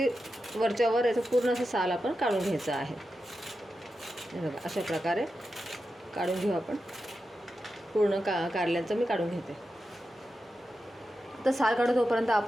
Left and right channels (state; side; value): normal; both; correlation 0.90